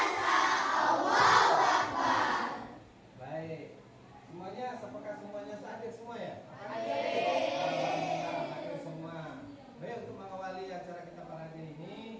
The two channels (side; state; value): both; identical; correlation 1.00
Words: Allahu Akbar. Baik. Semuanya, apakah semuanya hadir semua ya? Hadir. Alhamdulillah, hadir semua. Baik, untuk mengawali acara kita pada hari